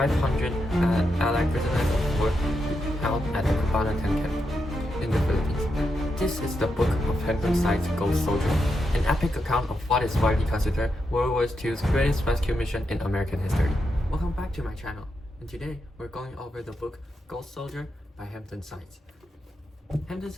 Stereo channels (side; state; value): both; normal; correlation 0.85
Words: Allied prisoners of war held at the Cabanatuan camp in the Philippines. This is the book of Hampton Sides, Ghost Soldier, an epic account of what is widely considered World War II's greatest rescue mission in American history. Welcome back to my channel, and today we're going over the book Ghost Soldier by Hampton Sides. Hampton